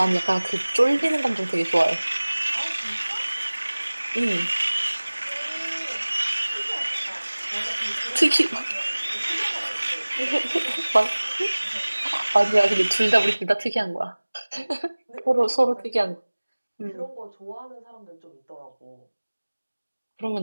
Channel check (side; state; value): both; inverted; correlation -1.00